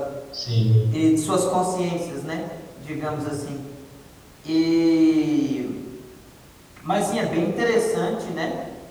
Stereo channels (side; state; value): both; identical; correlation 1.00